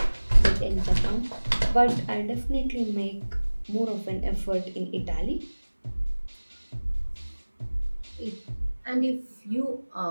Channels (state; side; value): inverted; both; correlation -1.00